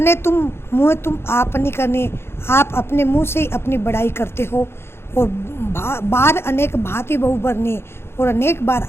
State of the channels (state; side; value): late; right; 0.12 ms